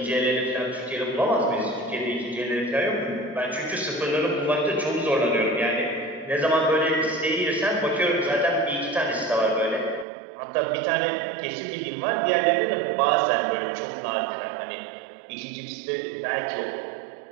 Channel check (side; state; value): left; drops out; at 10.1 s